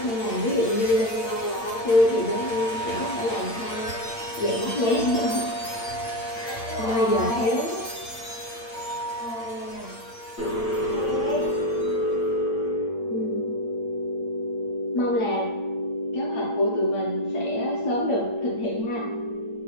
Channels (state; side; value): late; right; 8.7 ms